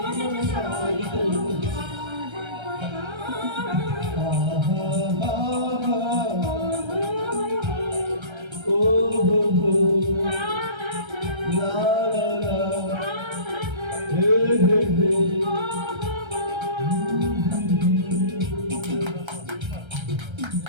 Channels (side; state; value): left; late; 1.3 ms